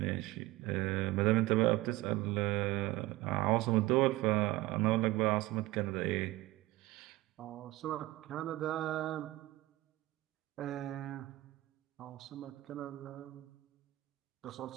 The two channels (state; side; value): quieter; left; 18.4 dB